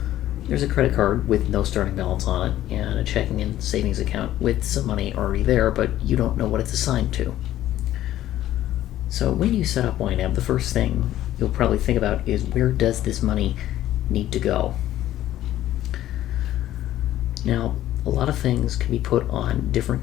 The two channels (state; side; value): quieter; right; 13.4 dB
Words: There's a credit card with no starting balance on it, and a checking and savings account with some money already there, but you don't know what it's assigned to. So when you set up YNAB, the first thing you'll probably think about is, where does this money need to go? Now, a lot of things can be put on